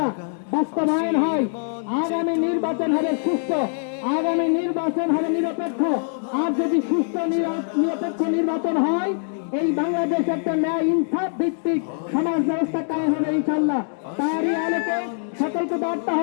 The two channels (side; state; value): right; silent; digital silence